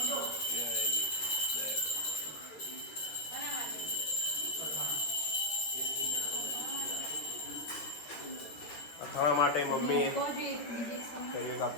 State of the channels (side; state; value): right; late; 13 ms